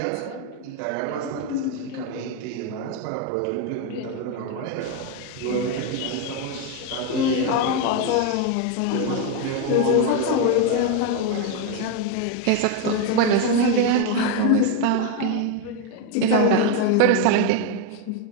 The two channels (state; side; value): different; both; correlation 0.02